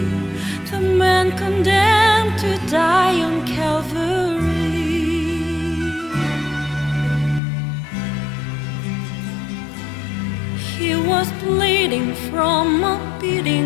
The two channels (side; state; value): right; drops out; at 7.4 s